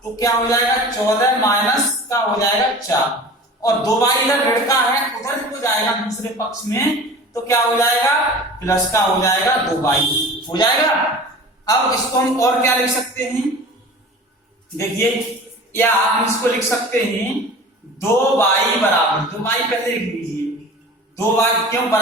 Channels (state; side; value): normal; both; correlation 0.39